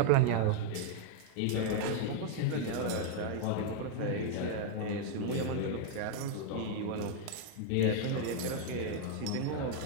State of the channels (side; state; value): both; different; correlation 0.00